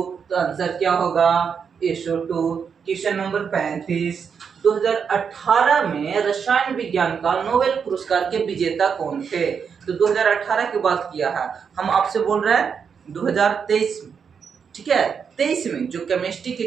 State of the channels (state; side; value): quieter; left; 6.6 dB